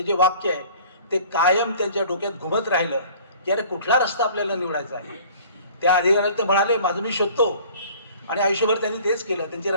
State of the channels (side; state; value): both; inverted; correlation -0.49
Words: जे वाक्य आहे ते कायम त्यांच्या डोक्यात घुमत राहिलं की अरे कुठला रस्ता आपल्याला निवडायचा आहे. त्या अधिकाऱ्याला ते म्हणाले, माझं मी शोधतो. आणि आयुष्यभर त्यांनी तेच केलं. त्यांचे